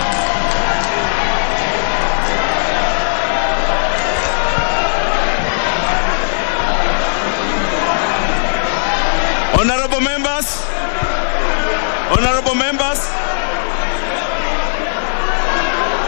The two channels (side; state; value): right; silent; digital silence